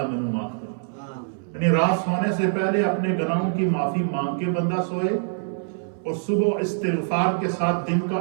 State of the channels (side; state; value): left; silent; 62 dB below the other